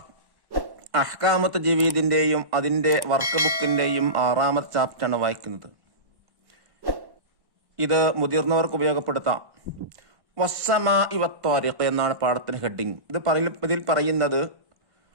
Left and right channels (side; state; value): left; late; 1.1 ms